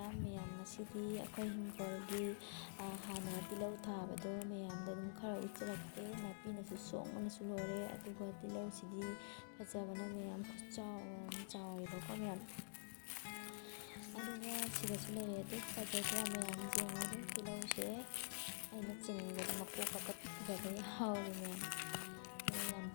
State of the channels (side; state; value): right; silent; digital silence